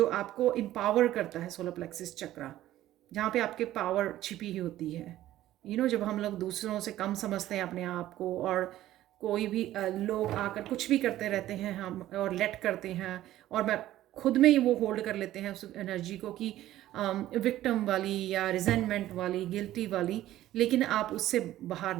आपको एम्पावर करता है। सोलर प्लेक्सिस चक्र जहाँ पे आपके पावर छिपी ही होती है। जब हम लोग दूसरों से कम समझते हैं अपने आप को, और कोई भी लोग आकर कुछ भी करते रहते हैं हम और लेट करते हैं, और मैं खुद में ही वो होल्ड कर लेते हैं उस एनर्जी को कि विक्टिम वाली या रिजेंटमेंट वाली, गिल्टी वाली, लेकिन आप उससे बाहर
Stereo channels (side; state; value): left; quieter; 14.1 dB